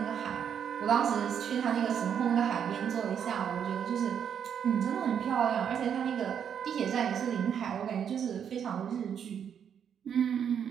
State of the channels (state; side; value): quieter; left; 8.2 dB